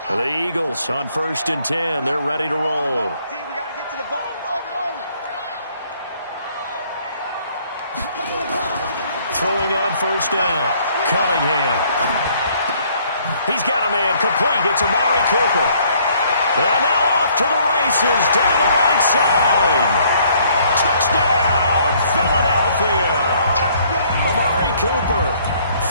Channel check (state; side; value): inverted; both; correlation -0.63